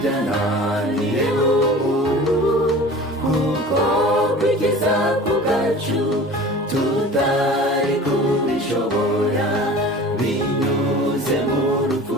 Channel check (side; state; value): both; normal; correlation 0.41